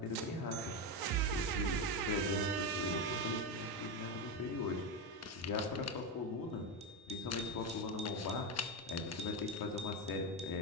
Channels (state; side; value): normal; both; correlation 0.12